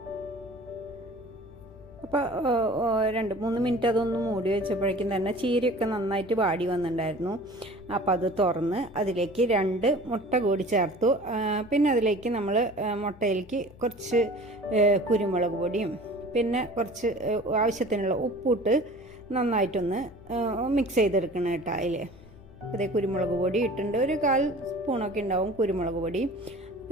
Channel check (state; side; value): noise; left; hum, 22 dB below the sound